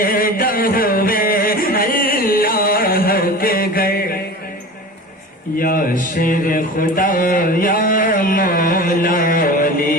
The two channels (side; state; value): both; normal; correlation 0.34